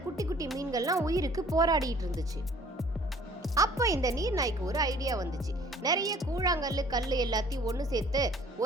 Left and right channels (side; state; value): both; normal; correlation 0.54